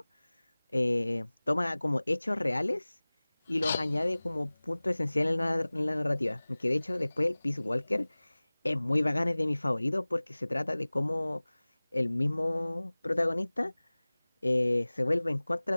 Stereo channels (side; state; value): both; inverted; correlation -1.00